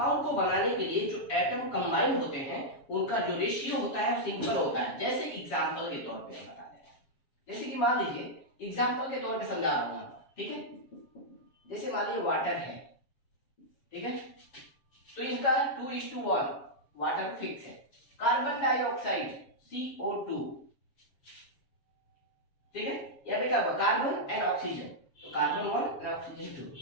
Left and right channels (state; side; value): late; right; 7.1 ms